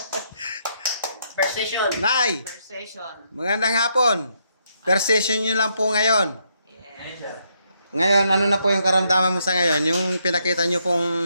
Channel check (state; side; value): inverted; both; correlation -0.76